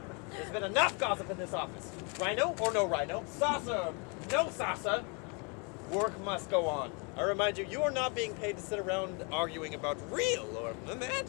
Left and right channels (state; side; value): quieter; right; 33.7 dB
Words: There's been enough gossip in this office. Rhino or no rhino, saucer, no saucer, work must go on. I remind you, you are not being paid to sit around arguing about real or